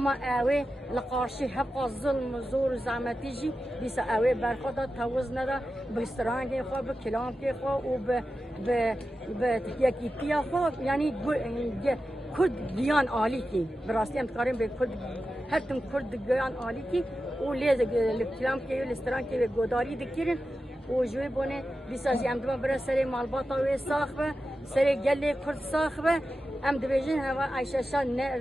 اوي لقارشي حق الظلم زور زعمتيجي بيس اوي برخدا توزنا دا بسترانجي خو بكلامكي خو وب ب يكيتيا خو يعني كرد جيان عاليكي براستي ام تقارن بكرد هرتم كرد جيان عاليكي وليز الكلامكي والسترانكي وغداري دكيرن وجوي بونه بيساجي ام دما برا سري مالباطا وي صاخبه سري جلي كرد صاخبه ام دبيجن هوا عايشه شان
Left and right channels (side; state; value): both; normal; correlation 0.92